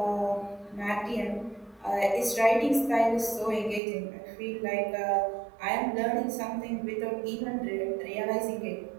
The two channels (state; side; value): drops out; left; at 3.8 s